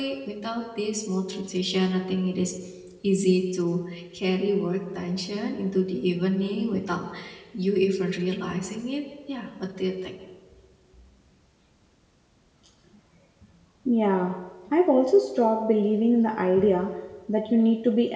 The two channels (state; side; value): identical; both; correlation 1.00